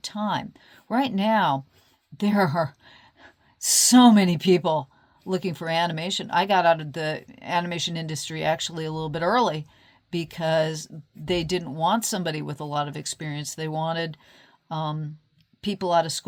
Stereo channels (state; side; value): identical; both; correlation 1.00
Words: time. Right now, there are so many people looking for animation. I got out of the animation industry actually a little bit early, because they didn't want somebody with a lot of experience. They wanted people out of